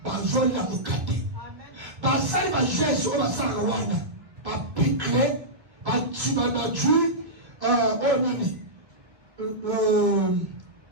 bazo na mukate. Ba sali ba Jésus o ba sala wana. Ba picle ba tiba na ju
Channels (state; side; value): late; left; 1.6 ms